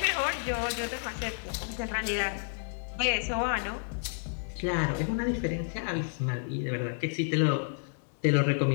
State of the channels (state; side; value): silent; right; digital silence